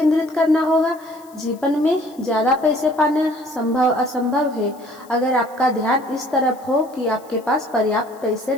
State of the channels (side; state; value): left; noise; hiss, 27 dB below the sound